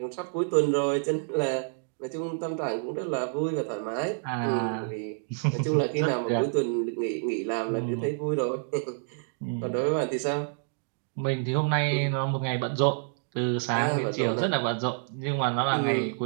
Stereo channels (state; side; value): silent; left; digital silence